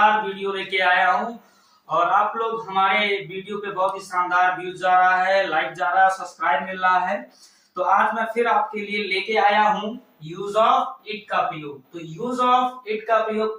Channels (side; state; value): both; identical; correlation 1.00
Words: वीडियो लेके आया हूँ और आप लोग हमारे वीडियो पे बहुत ही शानदार व्यूज जा रहा है, लाइक जा रहा है, सब्सक्राइब मिल रहा है। तो आज मैं फिर आपके लिए लेके आया हूँ यूज ऑफ इट का प्रयोग। तो यूज ऑफ इट का प्रयोग